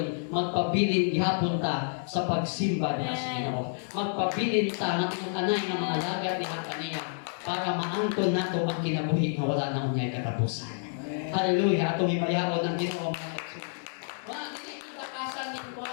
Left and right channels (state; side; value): silent; right; digital silence